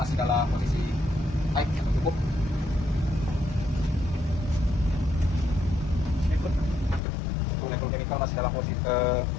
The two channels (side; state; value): right; drops out; at 7.0 s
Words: dalam posisi high atau cukup. Untuk level chemical masih dalam posisi